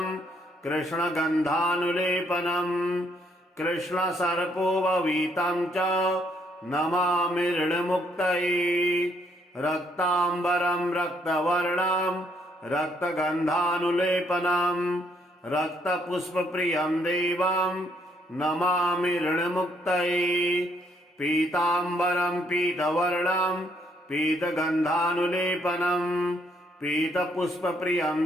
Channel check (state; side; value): normal; both; correlation 0.70